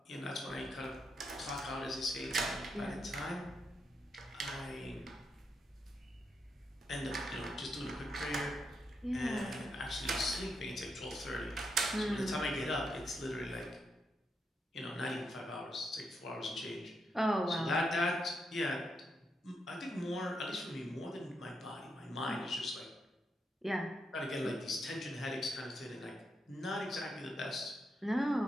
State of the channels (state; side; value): normal; both; correlation 0.82